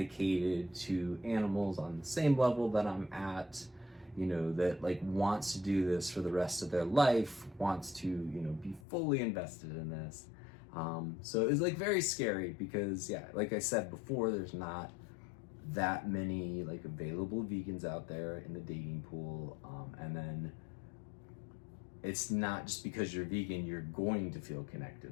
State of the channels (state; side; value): drops out; right; at 8.8 s